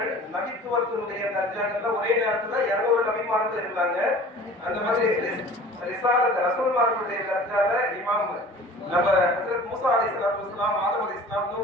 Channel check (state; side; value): normal; both; correlation 0.44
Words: நபித்துவத்தினுடைய தர்ஜாக்கள்ல ஒரே நேரத்துல 200 நபிமார்கள் இருந்தாங்க. அந்த மாதிரி ரிசாலத் ரசூல்மார்களுடைய தர்ஜால இமாம் நம்ம ஹஜ்ரத் மூசா அலைஹிஸ்ஸலாத்து வஸலாம், ஆதம் அலைஹிஸ்ஸலாம்,